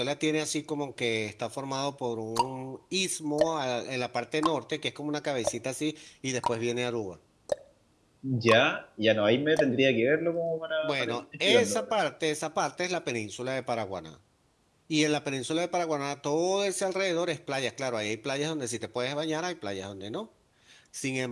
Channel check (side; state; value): both; identical; correlation 1.00